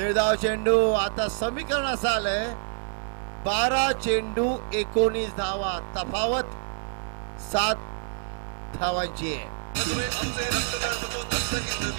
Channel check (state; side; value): silent; left; digital silence